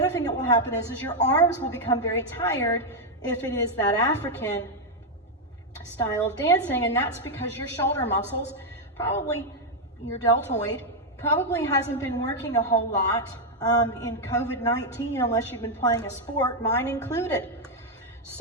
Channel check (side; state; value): both; normal; correlation 0.00